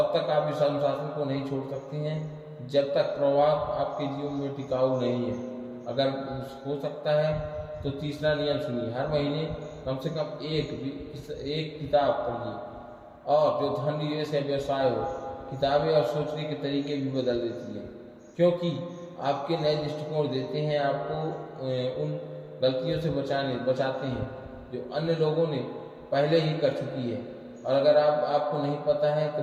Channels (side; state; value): both; identical; correlation 1.00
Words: तक आप इस अनुशासन को नहीं छोड़ सकते हैं जब तक प्रभाव आपके जीवन में टिकाऊ नहीं है। अगर हो सकता है तो तीसरा नियम सुनिए। हर महीने कम से कम एक किताब पढ़िए। और जो धन निवेश है, व्यवसाय हो, किताबें और सोचने के तरीके भी बदल देती हैं, क्योंकि आपके नए दृष्टिकोण देते हैं, आपको उन गलतियों से बचाते हैं जो अन्य लोगों ने पहले ही कर चुकी है। और अगर आपको नहीं पता है तो